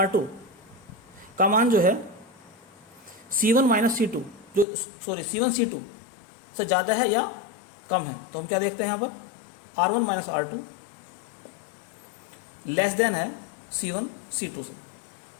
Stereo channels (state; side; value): drops out; right; at 4.7 s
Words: का मान जो है C1 माइनस C2 जो C1 C2 से ज़्यादा है या कम है। तो हम क्या देखते हैं यहाँ पर R1 minus R2 less than है C1 C2 से।